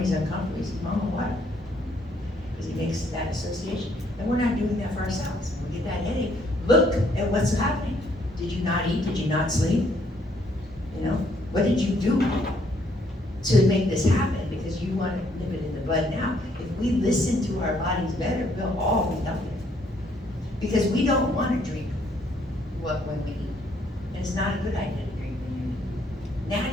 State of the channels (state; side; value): normal; both; correlation 0.68